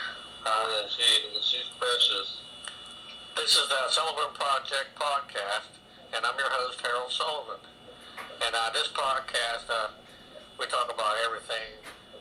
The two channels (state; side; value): identical; both; correlation 1.00